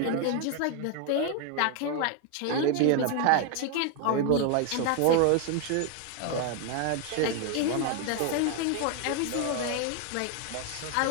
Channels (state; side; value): different; both; correlation 0.00